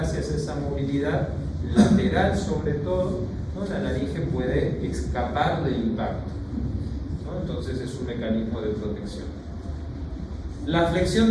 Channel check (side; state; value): both; identical; correlation 1.00